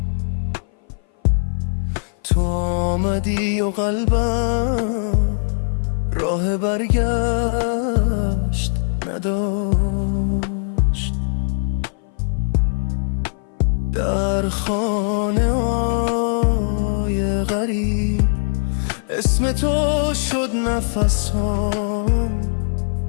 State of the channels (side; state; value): right; silent; 57 dB below the other